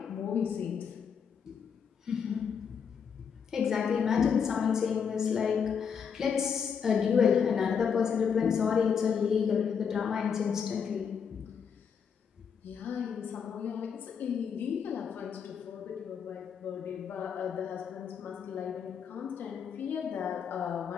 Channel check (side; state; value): right; quieter; 6.9 dB